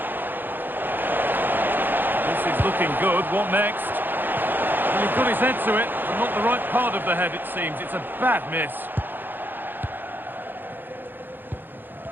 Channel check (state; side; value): late; left; 0.093 ms